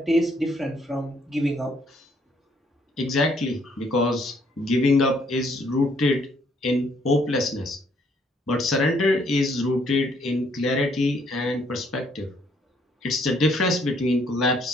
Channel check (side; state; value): both; normal; correlation 0.67